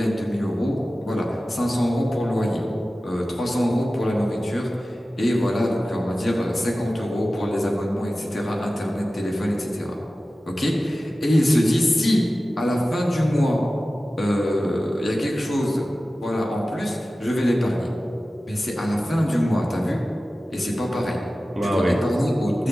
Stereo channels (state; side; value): normal; both; correlation 0.95